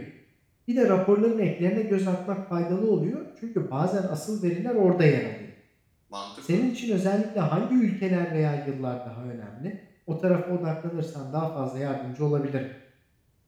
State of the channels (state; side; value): identical; both; correlation 1.00